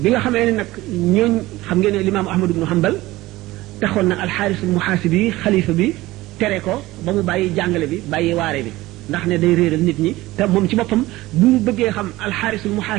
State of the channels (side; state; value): left; quieter; 18.3 dB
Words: bi nga xamee ne nag ñooñ xam ngeen ne limaamu Ahmad ibnu Hanbal taxoon na alxaarisul muhaasibi xalifa bi tere ko ba mu bàyyi jàngale bi bàyyi waare bi ndax ne day réeral nit ñi te moom ci boppam bu mu bëggee xam alxaarisul